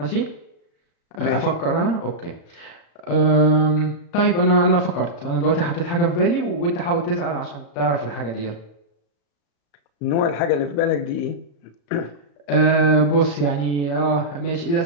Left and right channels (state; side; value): late; right; 35 ms